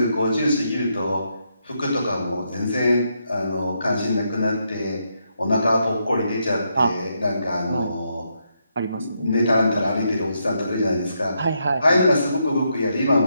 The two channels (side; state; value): both; inverted; correlation -0.80